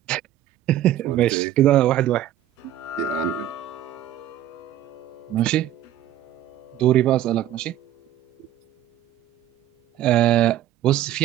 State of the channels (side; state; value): left; quieter; 12.1 dB